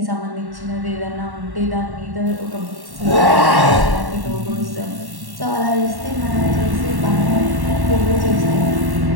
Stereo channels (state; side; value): late; left; 1.1 ms